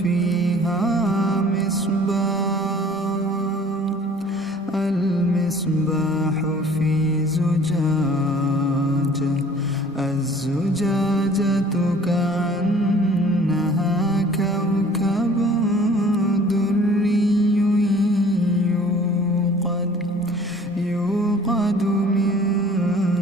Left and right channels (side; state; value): both; normal; correlation 0.51